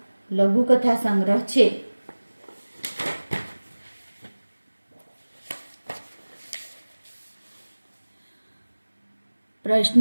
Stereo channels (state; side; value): inverted; both; correlation -1.00